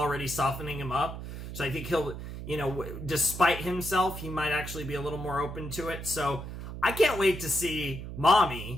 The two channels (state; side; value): noise; right; hum, 9 dB below the sound